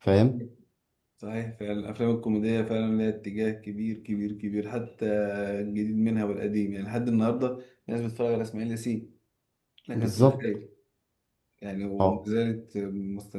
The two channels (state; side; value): identical; both; correlation 1.00